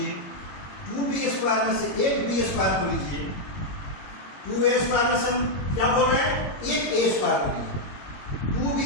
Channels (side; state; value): right; late; 21 ms